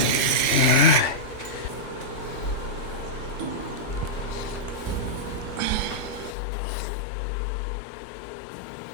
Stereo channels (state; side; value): drops out; right; at 6.4 s